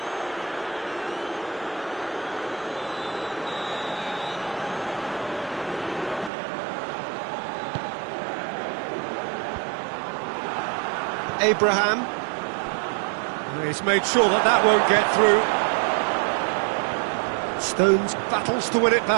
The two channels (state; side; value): drops out; left; at 6.3 s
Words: Abraham. He's made sure that that won't get through. Stones battles to win it